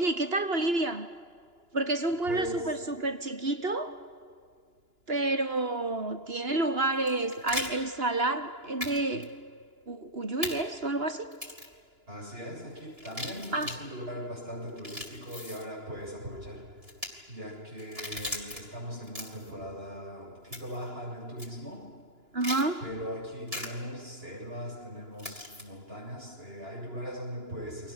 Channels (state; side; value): late; left; 2.9 ms